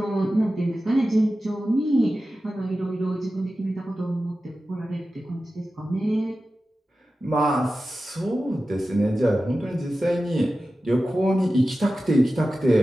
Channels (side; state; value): both; normal; correlation 0.94